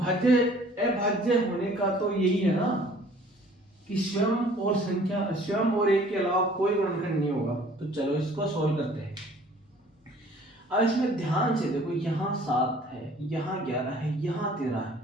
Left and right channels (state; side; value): normal; both; correlation 0.53